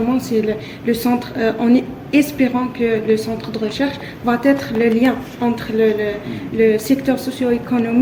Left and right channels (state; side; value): identical; both; correlation 1.00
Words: c'est le centre, en espérant que le centre de recherche va être le lien entre le secteur